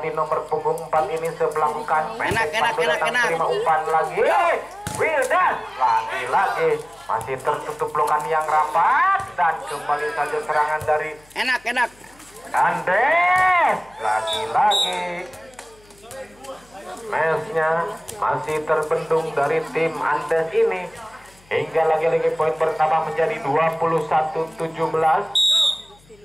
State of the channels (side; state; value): left; noise; hum, 29 dB below the sound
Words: nomor punggung 4 ini sebelahkan. Enak. Terima umpan lagi. Wildan lagi masih tertutup blokan yang rapat dan kembali saja serangan dari Enak. Andes. Lagi mesnya masih terbendung dari tim Andes ini hingga lagi poin pertama menjadi 21-17.